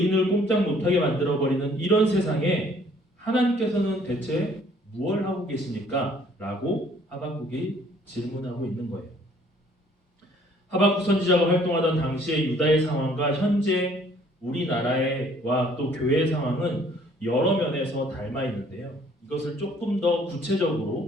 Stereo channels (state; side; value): normal; both; correlation 0.59